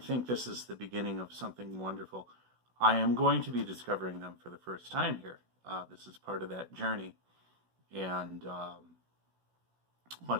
think this is the beginning of something wonderful. I am going to be discovering them for the first time here. This is part of that journey. And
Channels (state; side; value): late; left; 16 ms